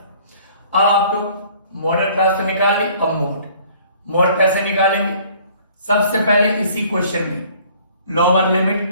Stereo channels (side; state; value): both; inverted; correlation -0.55